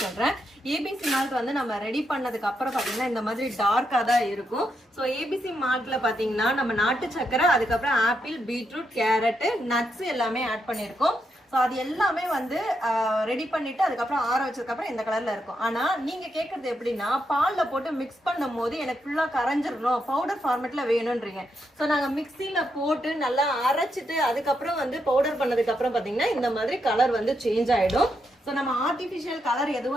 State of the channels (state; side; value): normal; both; correlation 0.81